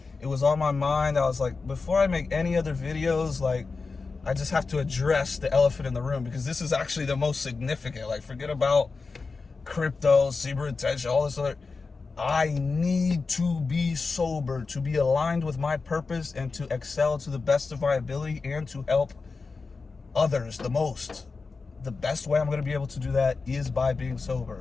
it was on my mind. I was like, before I make any other videos, like, I just have to address the elephant in the room because this is actually the most significant. Like, forget about crypto, cyber attention, all this other. I need to be sober, to be aligned with my purpose and to excel to the best of my ability and to help others the most. The best way I'm going to be able to do that is by being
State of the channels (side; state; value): right; quieter; 4.3 dB